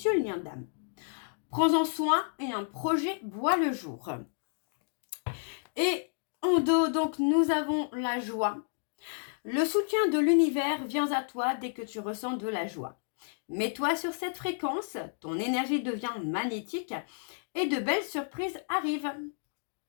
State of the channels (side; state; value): right; silent; digital silence